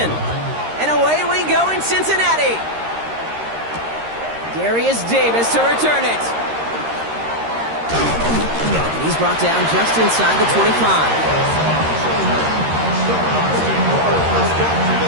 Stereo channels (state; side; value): late; left; 13 ms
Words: And away we go in Cincinnati. Darius Davis to return it. And he's brought down just inside the 25.